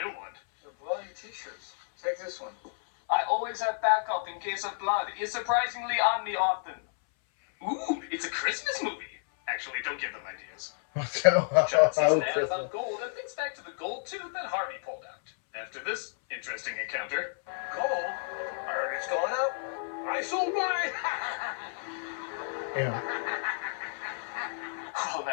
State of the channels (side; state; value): right; silent; 57 dB below the other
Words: new one. The bloody t-shirts. Take this one. I always have backup in case of blood. It's surprisingly on me often. Ooh, it's a Christmas movie. Actually, don't give them ideas. John sees an ad about gold and thinks back to the gold tooth that Harvey pulled out. After this interesting encounter, Gold? I heard it's going up. I sold mine. Yeah. well,